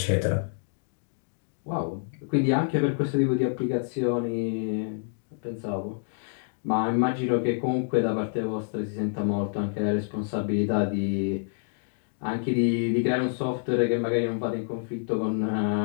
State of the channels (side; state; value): right; silent; digital silence